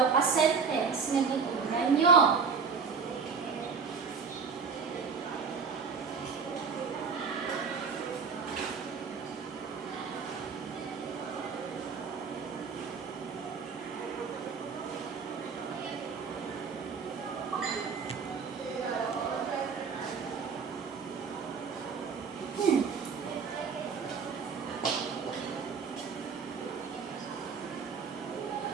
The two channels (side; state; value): left; quieter; 5.6 dB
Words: ka sentence na gitunan nyo.